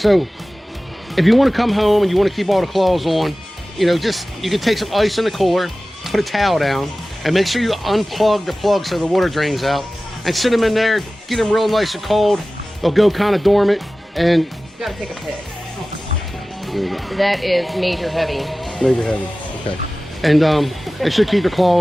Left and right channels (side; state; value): both; normal; correlation 0.96